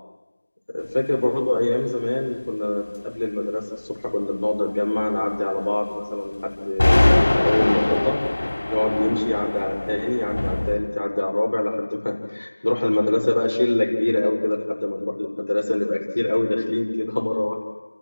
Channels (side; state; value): both; inverted; correlation -1.00